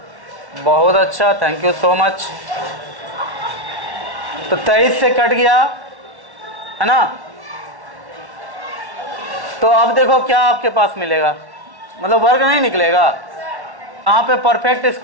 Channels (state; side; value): late; left; 1.1 ms